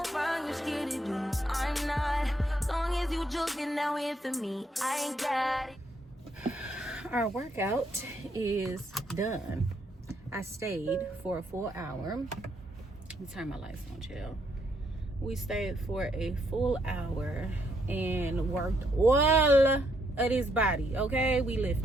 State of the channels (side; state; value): both; normal; correlation 0.74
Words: for me, I ain't got it. Our workout is done. I stayed for a full hour. Let me turn my lights on, chill. We stayed for a full hour and worked all of his body, okay? We